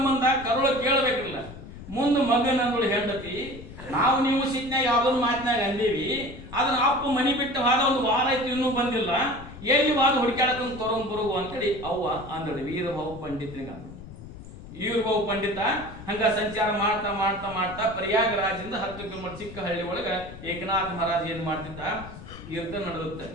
ಕರುಳ ಕೇಳಬೇಕಿಲ್ಲ. ಮುಂದೆ ಮಗನಂದಳು ಹೆಂಡತಿ, ನಾವು ನೀವು ಸಿಟ್ನಾಗ ಯಾವ್ದೊಂದು ಮಾತಿನಾಗ ಅಂದೀವಿ, ಅದನ್ನ ಅಪ್ಪ ಮನಿ ಬಿಟ್ಟು ಹಾದ ಒಂದು ವಾರ ಆಯ್ತು ಇನ್ನೂ ಬಂದಿಲ್ಲ, ಎಲ್ಲಿ ವಾದ ಹುಡುಕಾಡಕೊಂಡು ತೊಗೊಂಡ್ ಬರುವು ಅಂತೇಳಿ ಅವ್ವ ಅಂದಳು. ವೀರಭಾವು ಪಂಡಿತನಿಗೆ ಅಂದಳು. ವೀರಭಾವು ಪಂಡಿತ ಹಂಗ ಸಂಚಾರ ಮಾಡ್ತಾ ಮಾಡ್ತಾ ಮಾಡ್ತಾ ಪ್ರಯಾಗರಾಜದಿಂದ 10 ಕಿಲೋಮೀಟರ್ ಚಿಕ್ಕ ಹಳ್ಳಿ ಒಳಗ ಏಕನಾಥ ಮಹಾರಾಜ್ ಏನ್ ಮಾಡ್ತಿದ್ದ? ಕೀರ್ತನ ನಡೆದುತ್ತೆ.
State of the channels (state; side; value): noise; left; rumble, 14 dB below the sound